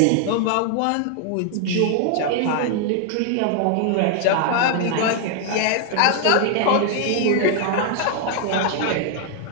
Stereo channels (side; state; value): both; different; correlation 0.00